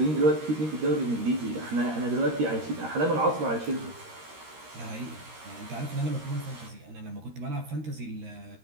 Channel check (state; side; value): late; left; 13 ms